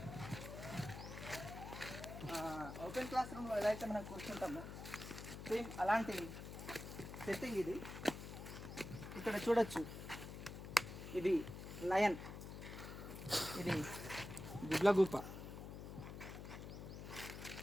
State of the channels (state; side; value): noise; left; hum, 9 dB below the sound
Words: ఓపెన్ క్లాస్ రూమ్లో ఎలా అయితే మనం కూర్చుంటామో సేమ్ అలాంటి సెట్టింగ్ ఇది. ఇక్కడ చూడొచ్చు, ఇది లయన్, ఇది గుడ్లగూప.